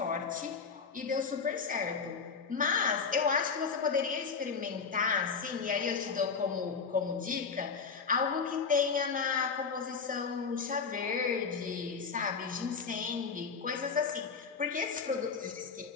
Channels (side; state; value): right; quieter; 5.5 dB